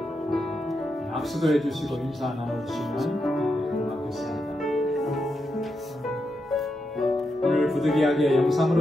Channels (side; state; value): both; normal; correlation 0.85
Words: 악수도 해주시고 인사 나눠주시면 고맙겠습니다. 오늘 부득이하게